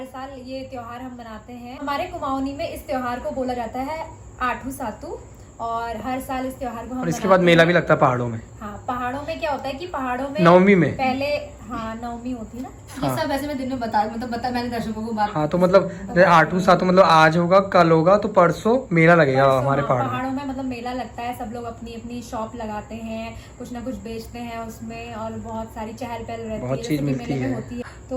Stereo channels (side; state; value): both; identical; correlation 1.00